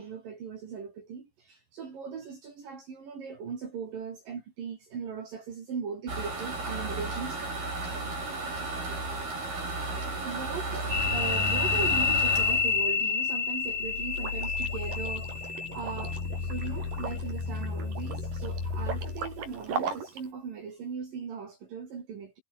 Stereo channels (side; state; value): left; late; 11 ms